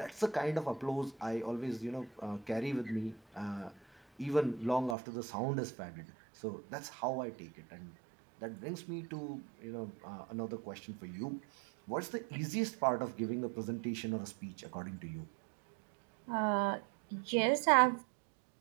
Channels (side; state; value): left; drops out; at 5.0 s